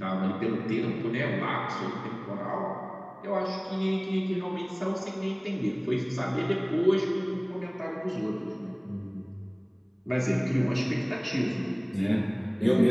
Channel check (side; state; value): both; identical; correlation 1.00